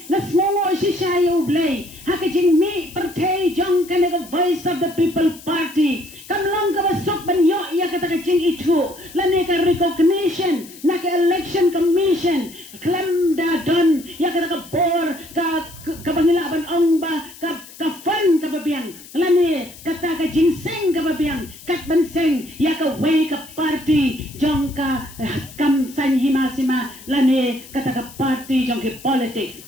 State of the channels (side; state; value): left; noise; hiss, 19 dB below the sound